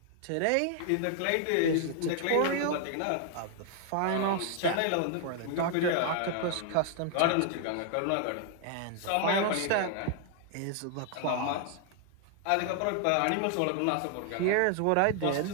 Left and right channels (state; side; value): different; both; correlation 0.00